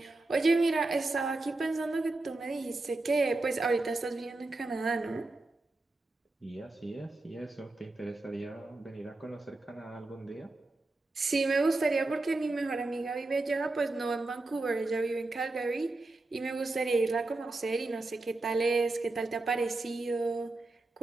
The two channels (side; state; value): left; quieter; 3.1 dB